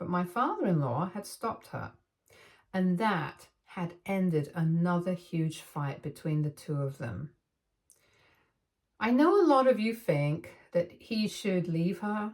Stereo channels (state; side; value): identical; both; correlation 1.00